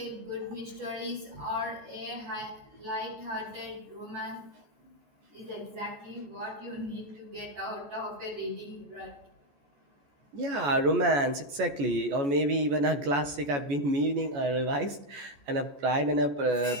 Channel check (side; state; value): left; late; 14 ms